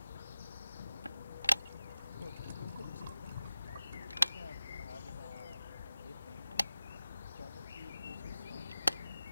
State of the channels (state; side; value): inverted; both; correlation -0.95